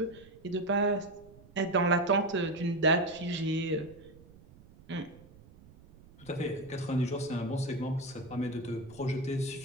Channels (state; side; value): noise; right; rumble, 23 dB below the sound